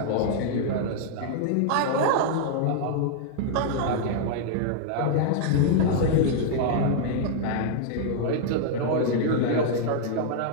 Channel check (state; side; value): different; both; correlation -0.01